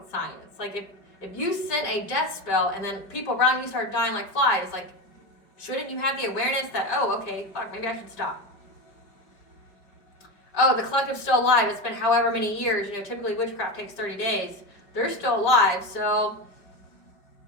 science. Like, if you sent a death spell and then people around you start dying like flies, like, shouldn't you have the awareness that, oh, okay, fuck, maybe I should stop? Oh, the collective's still alive. It's been however many years. You know, typically witchcraft takes 30 days. They're still alive, so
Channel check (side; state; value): right; late; 5.1 ms